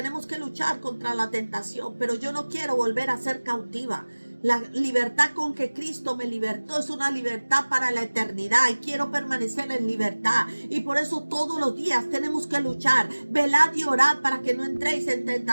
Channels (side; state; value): both; inverted; correlation -1.00